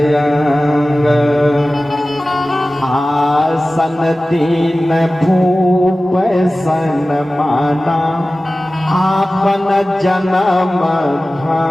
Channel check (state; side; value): normal; both; correlation 0.96